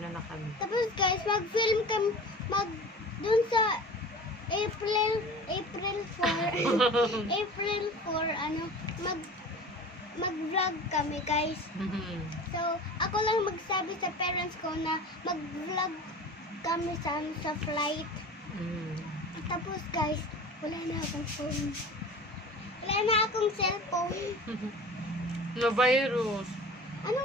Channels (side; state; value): both; normal; correlation 0.37